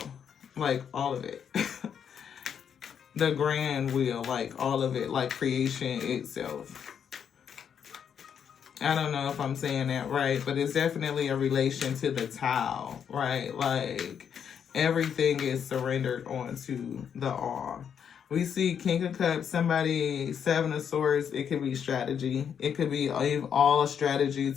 Like, all of it. The grand wheel, like, all of it. Like, creation itself. I don't know if I'm saying that right, but it's definitely a relation to the Tao, right? Like, everything is surrendered onto the all. We see King of Cups, somebody, Seven of Swords. It could be strategy. It could be all strategy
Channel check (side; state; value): right; quieter; 7.9 dB